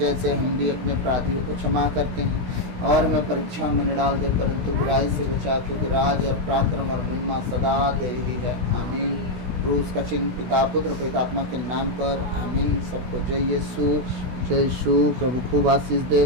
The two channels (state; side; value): late; left; 16 ms